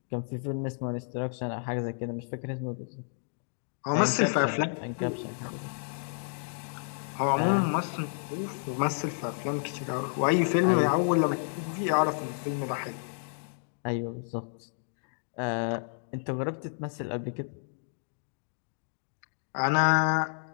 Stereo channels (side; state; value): right; silent; digital silence